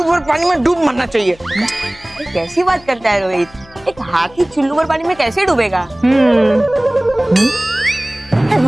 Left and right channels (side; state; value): left; noise; hum, 25 dB below the sound